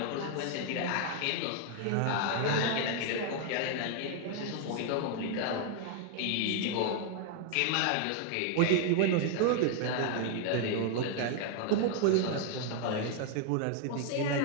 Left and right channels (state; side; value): different; both; correlation 0.00